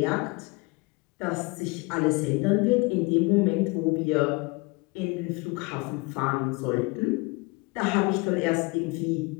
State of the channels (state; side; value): quieter; right; 26.3 dB